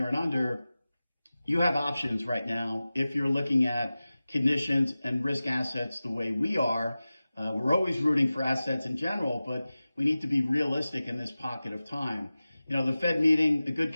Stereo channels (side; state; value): both; inverted; correlation -0.96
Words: and under, you have options right now if you're looking at conditions and risk assets the way we are. We're always rooting for assets in general, but we need to be realistic in this pocket of time. The Fed meeting, a good